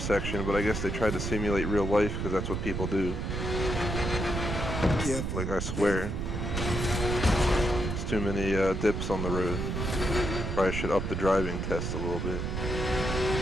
but I guess they tried to simulate real life because that's what people do. Careful. Like, I swear. There's too many dips on the road. Probably should up the driving test a little bit.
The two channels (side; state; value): right; noise; rumble, 2 dB below the sound